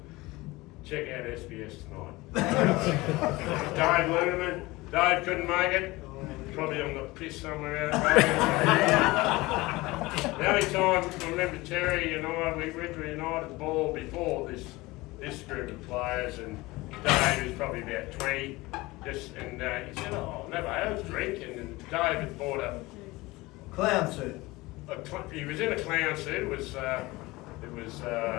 Check out SBS tonight. Dave Lunerman. Dave couldn't make it. Probably on the piss somewhere out there. The only time I remember Terry and I, we went to a United ball before this group of players, and Dave was probably about 20. And he said, "Oh, never had a drink." And Dave had bought a Clown suit. He was in a clown suit. It was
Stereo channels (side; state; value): right; quieter; 21.1 dB